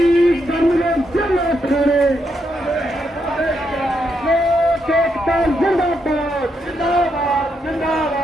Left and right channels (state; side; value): normal; both; correlation 0.80